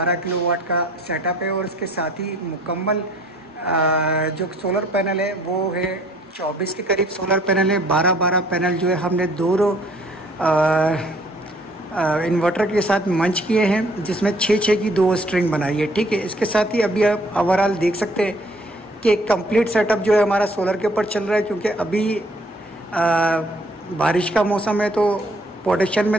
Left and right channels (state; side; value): normal; both; correlation 0.60